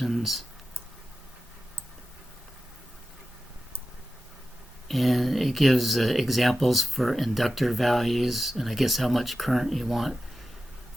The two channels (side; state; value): both; normal; correlation 0.93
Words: And it gives examples for inductor values, and I guess how much current you want